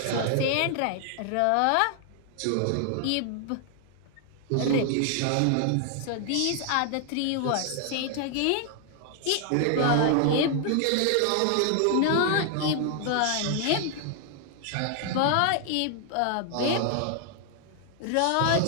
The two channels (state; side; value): different; both; correlation 0.00